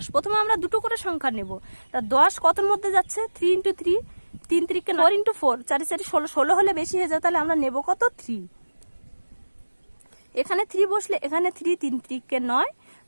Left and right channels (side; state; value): both; inverted; correlation -1.00